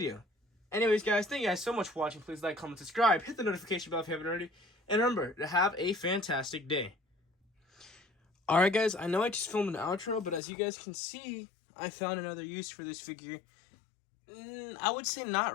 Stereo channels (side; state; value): right; drops out; at 10.4 s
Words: Anyways, guys, thank you guys so much for watching. Please like, comment, subscribe, hit the notification bell if you haven't already, and remember to have a fantastic day. Alright, guys, I know I just filmed an outro, but as you guys can see, I found another use for this figure. I would say not